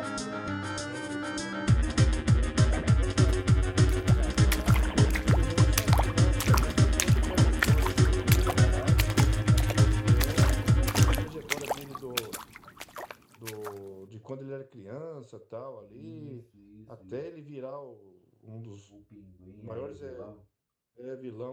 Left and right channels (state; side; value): identical; both; correlation 1.00